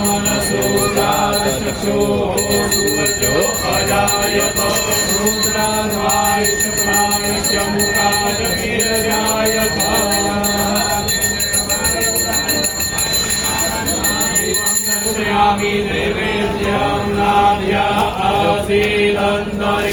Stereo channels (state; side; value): identical; both; correlation 1.00